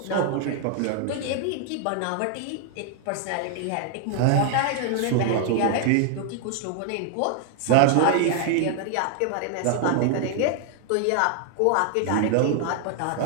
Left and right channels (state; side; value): different; both; correlation 0.00